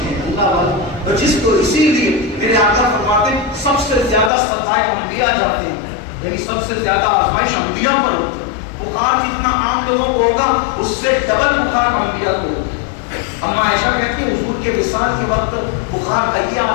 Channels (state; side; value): drops out; right; at 4.3 s